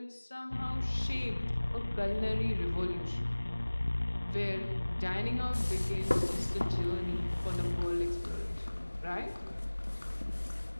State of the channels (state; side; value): inverted; both; correlation -1.00